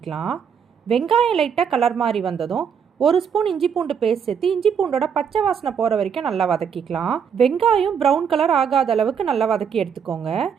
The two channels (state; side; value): quieter; left; 7.3 dB